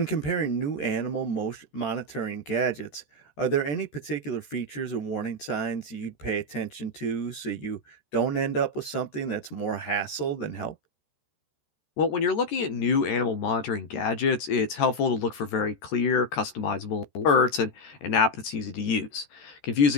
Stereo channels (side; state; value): right; late; 13 ms